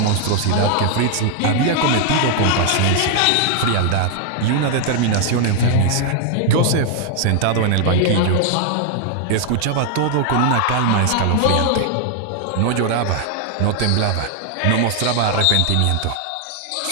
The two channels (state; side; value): different; both; correlation 0.00